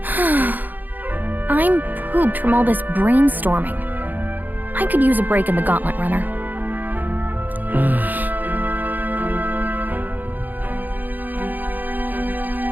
I'm pooped from all this brainstorming. I could use a break in the gauntlet runner.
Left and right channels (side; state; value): left; late; 0.085 ms